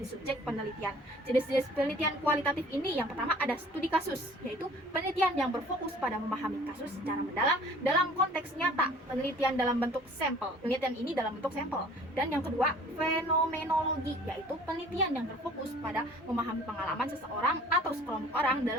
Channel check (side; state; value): both; normal; correlation 0.51